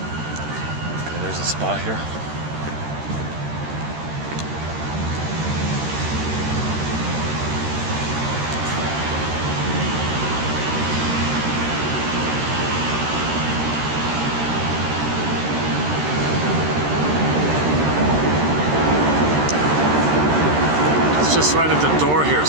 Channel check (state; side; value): late; left; 13 ms